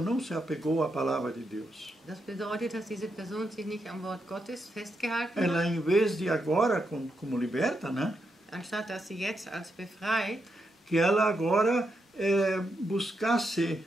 se apegou à palavra de Deus. Das bedeutet, dass diese Person sich nicht am Wort Gottes festgehalten Ela, hat. em vez de agora, como liberta, né? Anstatt dass sie jetzt als befreit, Que ela agora buscasse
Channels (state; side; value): normal; both; correlation 0.83